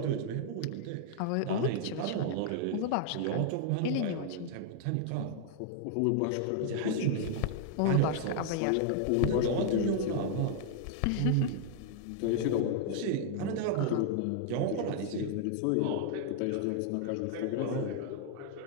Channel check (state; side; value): different; both; correlation -0.01